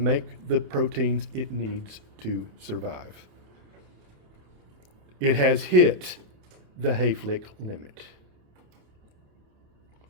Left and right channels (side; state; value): left; late; 28 ms